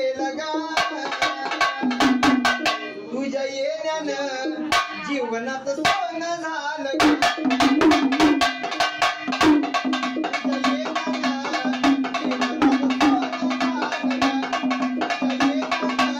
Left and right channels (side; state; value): both; identical; correlation 1.00